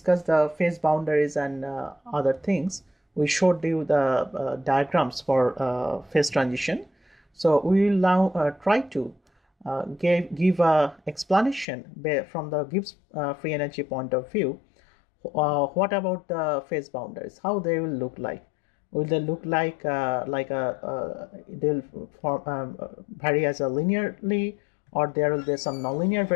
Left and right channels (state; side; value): drops out; right; at 11.7 s